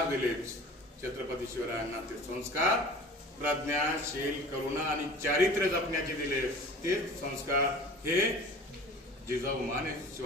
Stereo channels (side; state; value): both; normal; correlation 0.42